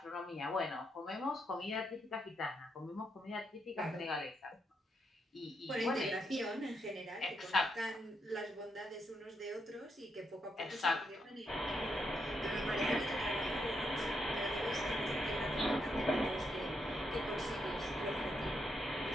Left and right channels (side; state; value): both; normal; correlation 0.80